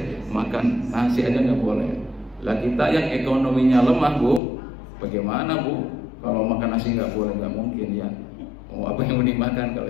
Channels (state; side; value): drops out; right; at 4.4 s